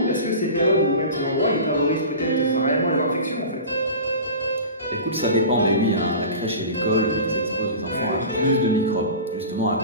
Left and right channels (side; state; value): both; inverted; correlation -0.34